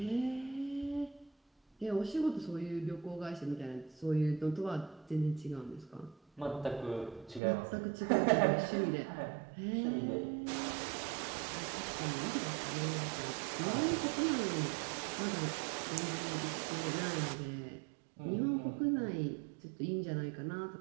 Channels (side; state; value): left; drops out; at 7.4 s